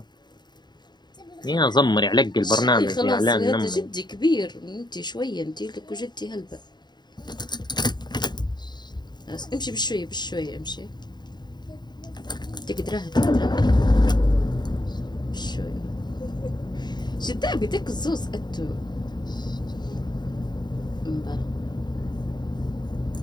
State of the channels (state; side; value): late; right; 0.21 ms